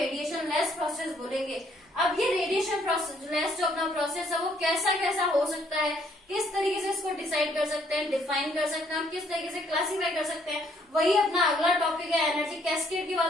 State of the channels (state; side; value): normal; both; correlation 0.66